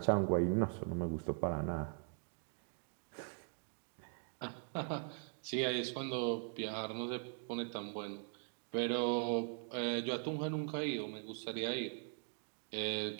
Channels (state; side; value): silent; left; 50 dB below the other